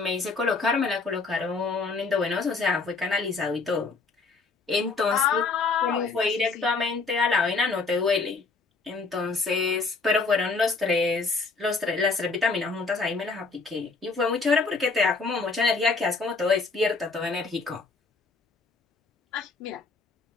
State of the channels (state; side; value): quieter; right; 4.2 dB